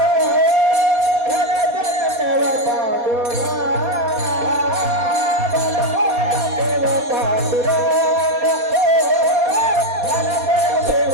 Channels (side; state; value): left; late; 4.2 ms